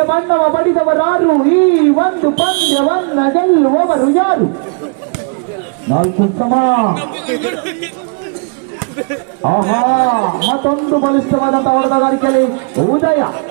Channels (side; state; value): left; quieter; 37.7 dB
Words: ಬಣ್ಣವ ಬಡಿದವರಾರು, ಈ ಒಂದು ಪಂದ್ಯವನ್ನ ಗೆಲ್ಲುವವರು ಯಾರು? 4 ಸಮ. ಆಹಾ ಮತ್ತೊಂದು ಬಲಿಷ್ಠವಾದಂತಹ ಆಟಗಾರಿಕೆಯಲ್ಲಿ ಉದಯ.